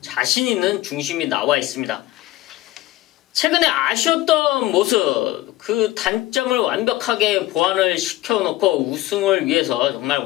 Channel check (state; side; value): quieter; right; 16.7 dB